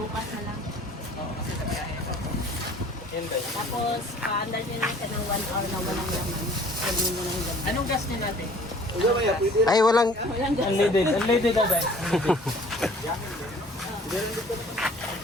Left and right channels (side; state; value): both; normal; correlation 0.52